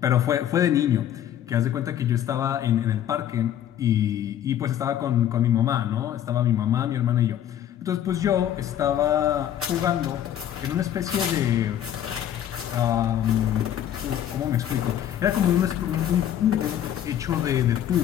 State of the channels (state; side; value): quieter; right; 10.7 dB